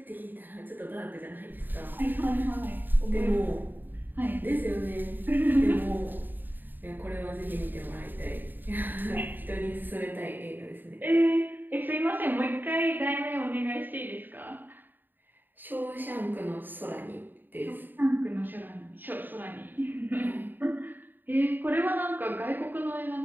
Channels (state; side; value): late; left; 0.091 ms